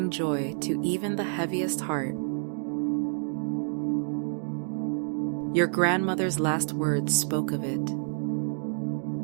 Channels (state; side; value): silent; left; digital silence